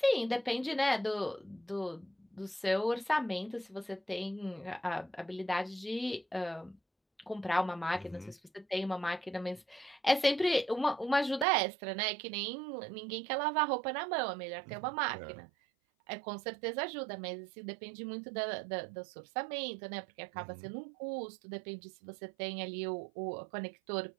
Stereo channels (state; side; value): drops out; left; at 11.5 s